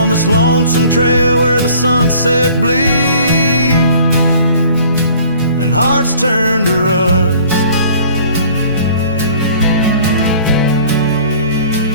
this lonesome trail where the sunset bleeds and hearts turn to rust.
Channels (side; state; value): both; inverted; correlation -0.52